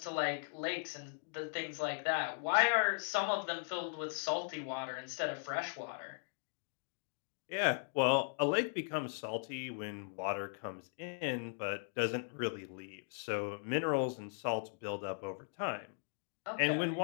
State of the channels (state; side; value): silent; right; digital silence